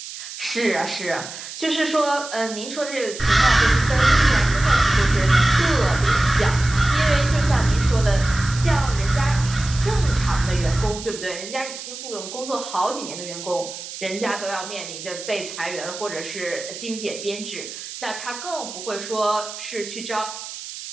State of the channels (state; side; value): noise; right; hiss, 11 dB below the sound